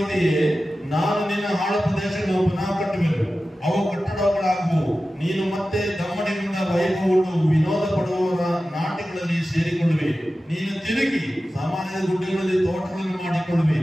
ನಾನು ನಿನ್ನ ಹಾಳು ಪ್ರದೇಶಗಳನ್ನು ಪುನಃ ಕಟ್ಟುವೆನು, ಅವು ಕಟ್ಟಡಗಳಾಗುವು. ನೀನು ಮತ್ತೆ ದಮ್ಮಡಿಗೊಂಡ ವೈಭವವನ್ನು ವಿನೋದ ಪಡುವವರ ನಾಟ್ಯಗಳಲ್ಲಿ ಸೇರಿಕೊಳ್ಳುವೆ. ನೀನು ತಿರುಗಿ ಸಾಮಾನ್ಯ ಗುಡ್ಡೆಗಳಲ್ಲಿ ತೋಟಗಳನ್ನು ಮಾಡಿಕೊಳ್ಳುವೆ.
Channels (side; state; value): both; normal; correlation 0.95